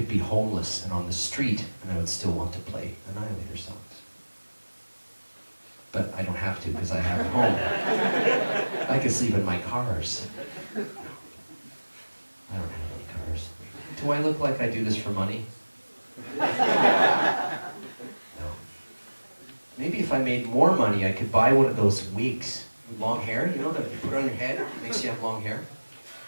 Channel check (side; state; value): both; inverted; correlation -1.00